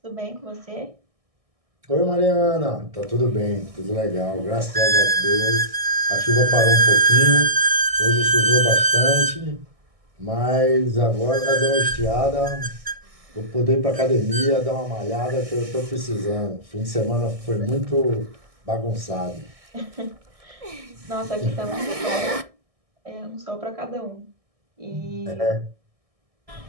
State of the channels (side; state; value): left; late; 1.6 ms